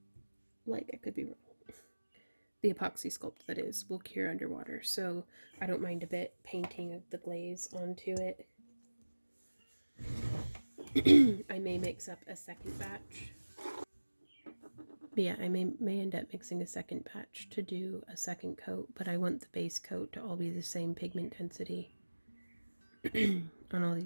Like, I could be wrong. The epoxy sculpt, that is, will cure underwater, so I don't mind a bit painting the glaze onto it. I may mix up a second batch. But yeah, I may end up mixing a second batch to do a second coat, but I want the base coat to all be the same pigment density on all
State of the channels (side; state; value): both; inverted; correlation -1.00